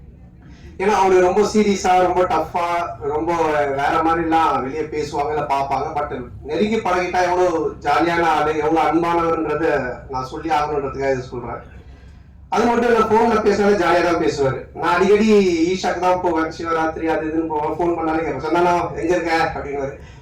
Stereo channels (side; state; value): both; identical; correlation 1.00